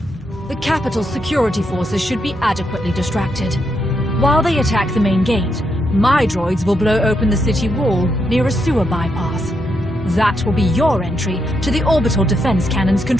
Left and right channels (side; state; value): both; normal; correlation 0.81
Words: the capital's security forces should be adequately distracted. While they attack the main gate, my droids will blow open the city wall near a sewer bypass. That will be your entry to the Orbital Defense Cannon's